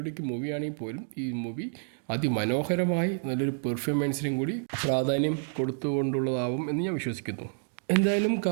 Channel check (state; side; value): silent; left; 59 dB below the other